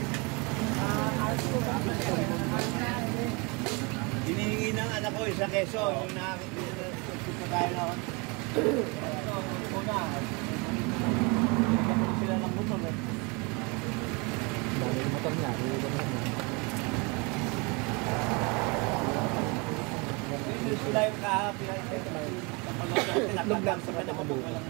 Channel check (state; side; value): quieter; left; 29.5 dB